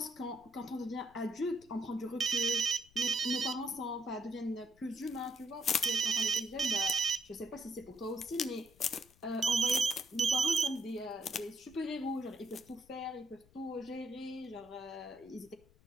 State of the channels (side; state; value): left; noise; rumble, 28 dB below the sound